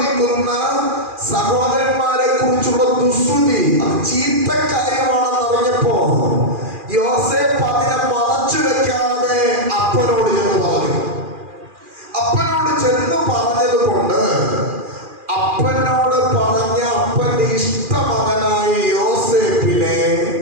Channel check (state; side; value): late; left; 2.4 ms